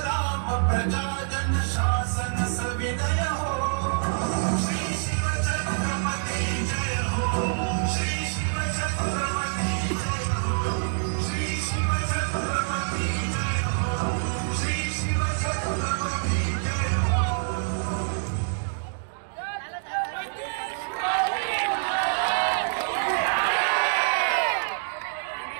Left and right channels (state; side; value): silent; left; digital silence